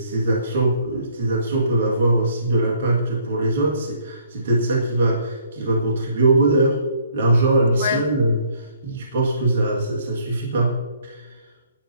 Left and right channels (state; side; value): inverted; both; correlation -0.64